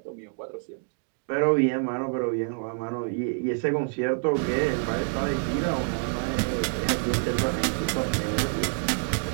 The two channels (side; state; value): left; silent; 60 dB below the other